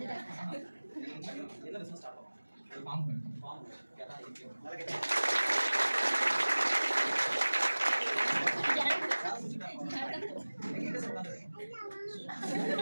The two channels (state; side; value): inverted; both; correlation -1.00